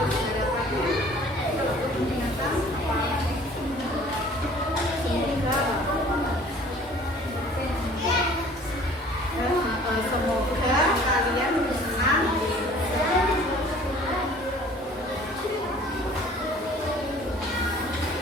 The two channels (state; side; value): normal; both; correlation 0.51